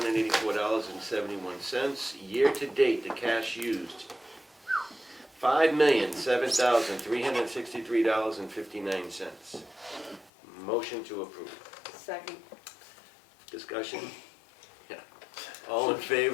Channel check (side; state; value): right; drops out; at 10.3 s